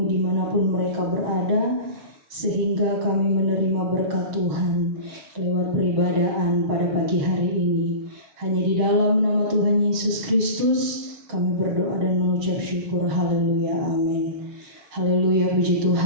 dimanapun mereka berada, sehingga kami menerima berkat Tuhan lewat peribadahan pada pagi hari ini. Hanya di dalam nama Tuhan Yesus Kristus kami berdoa dan mengucap syukur. Haleluya, amin. Haleluya, puji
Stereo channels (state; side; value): late; left; 7.5 ms